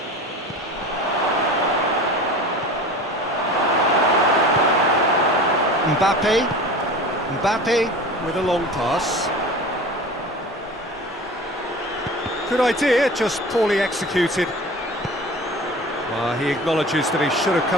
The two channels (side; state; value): both; normal; correlation 0.37